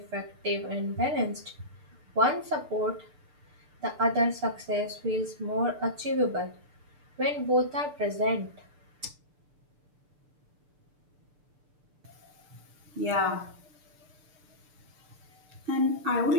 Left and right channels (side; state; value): left; late; 6.8 ms